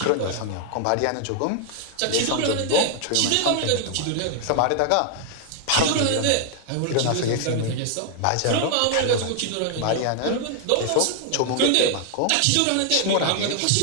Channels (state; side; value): different; both; correlation 0.00